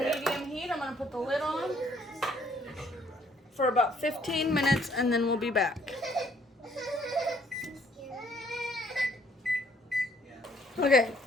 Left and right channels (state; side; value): normal; both; correlation 0.64